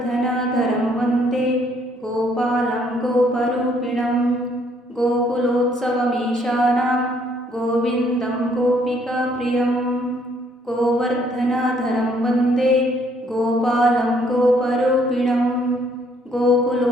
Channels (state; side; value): normal; both; correlation 0.66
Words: वन्दे गोपालं गोपरूपिणं गोकुलोत्सवमीशानां गोविन्दं गोपिकाप्रियं गोवर्धनधरं वन्दे गोपालं गोपरूपिणं